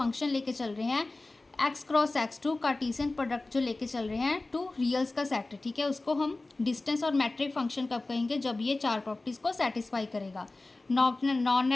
लेके चल रहे हैं, x cross x2 Cartesian product जो लेके चल रहे हैं 2 रियल्स का सेट, ठीक है, उसको हम डिस्टेंस और मैट्रिक फंक्शन कब कहेंगे, जब ये 4 प्रॉपर्टीज़ को सेटिस्फाई करेगा। नॉन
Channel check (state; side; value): quieter; right; 3.1 dB